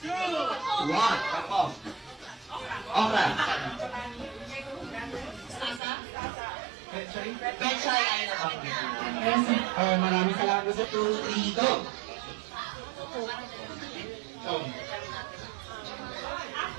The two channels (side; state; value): left; drops out; at 5.8 s